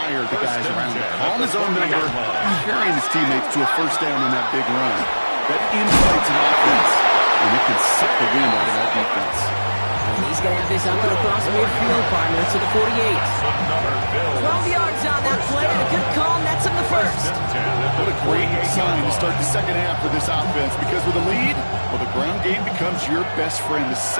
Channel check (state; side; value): inverted; both; correlation -1.00